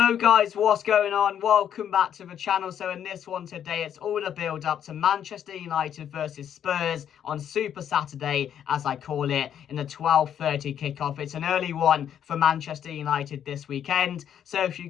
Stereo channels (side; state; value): right; quieter; 9.4 dB